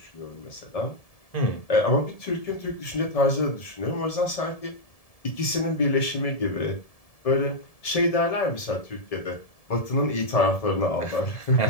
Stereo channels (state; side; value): late; right; 1.7 ms